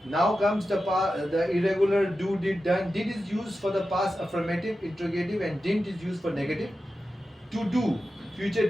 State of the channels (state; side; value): normal; both; correlation 0.92